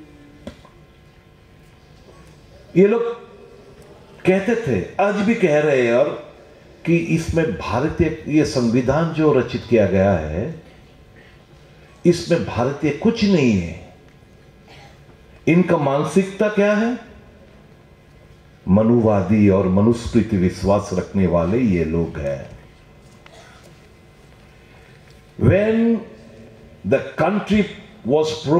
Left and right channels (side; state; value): both; identical; correlation 1.00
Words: ये लोग कहते थे, आज भी कह रहे हैं, और कि इसमें भारतीय ये संविधान जो रचित किया गया है इसमें भारतीय कुछ नहीं है। इनका मानसिकता क्या है? मनुवादी और मनुस्मृति विश्वास रखने वाले ये लोग हैं। When the country was